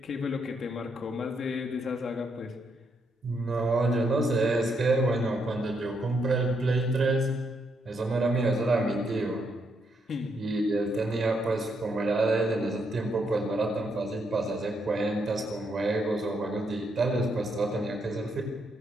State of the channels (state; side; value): normal; both; correlation 0.77